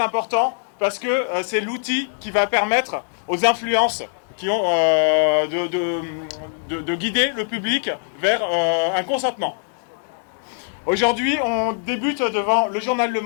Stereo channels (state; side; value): silent; right; digital silence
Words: important parce que c'est l'outil qui va permettre aux influences qui ont de guider le public vers un consentement. Aujourd'hui, on débute devant le journal Le